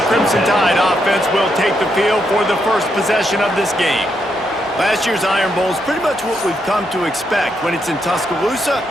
Crimson Tide offense will take the field for the first possession of this game. Last year's Iron Bowl is pretty much what we've come to expect when it's in Tuscaloosa,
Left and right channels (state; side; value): normal; both; correlation 0.79